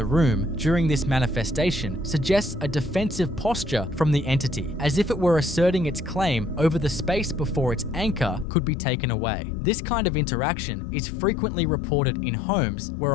room during this manifestation suggests a defensive posture from the entity, as if it were asserting its claim over the space before its anchor could be taken away. This kind of interaction is frequently reported in homes where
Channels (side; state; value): right; drops out; at 8.5 s